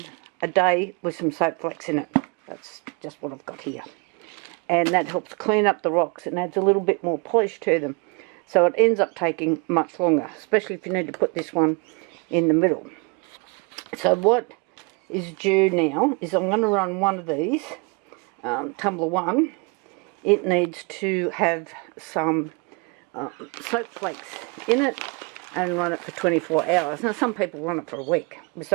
a day with some soap flakes in it. That's just what I've got here. And that helps clean up the rocks and adds a little bit more polish to them. So it ends up taking much longer, especially if you need to put this one in the middle. So what is due now is I'm going to run one of these tumbler 1, it needs to have some soap flakes in it and run it for 24 hours. Now some people run it for a week with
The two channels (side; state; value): left; quieter; 31.7 dB